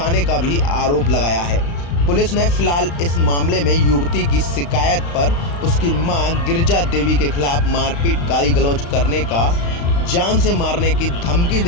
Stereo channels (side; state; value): right; late; 35 ms